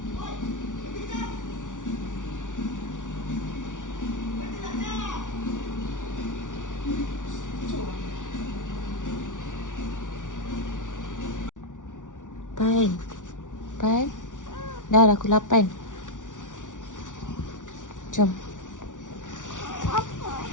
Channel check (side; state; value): right; late; 0.87 ms